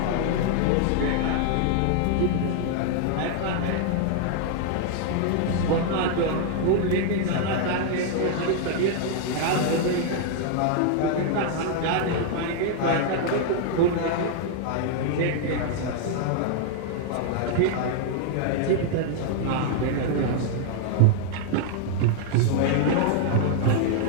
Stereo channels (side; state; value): both; different; correlation 0.00